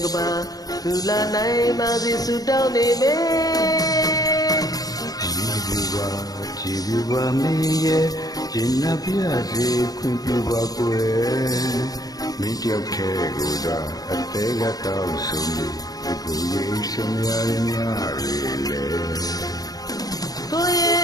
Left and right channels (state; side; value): late; right; 0.18 ms